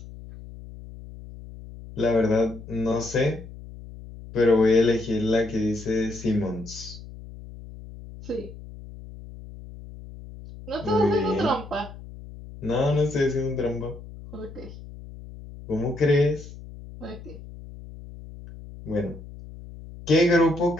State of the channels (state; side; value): noise; left; hum, 15 dB below the sound